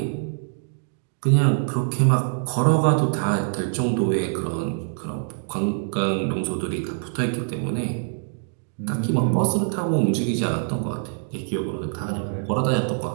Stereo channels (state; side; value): silent; left; digital silence